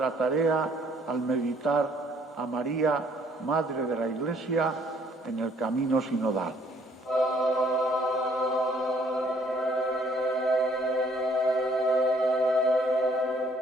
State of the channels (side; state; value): both; normal; correlation 0.62